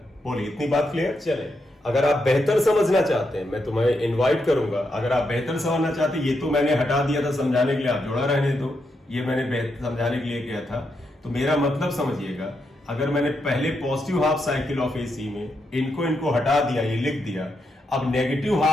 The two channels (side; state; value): both; normal; correlation 0.82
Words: बोलिए इतनी बात क्लियर। चले अगर आप बेहतर समझना चाहते हैं, मैं तुम्हें इनवाइट करूंगा, अगर आप बेहतर समझना चाहते हैं, ये तो मैंने हटा दिया था समझाने के लिए, आप जोड़ा रहने दो, ये मैंने समझाने के लिए किया था, तो मेरा मतलब समझिएगा, अगर मैंने पहले positive half cycle of AC में इनको हटा दिया, ये लिख दिया, अब नेगेटिव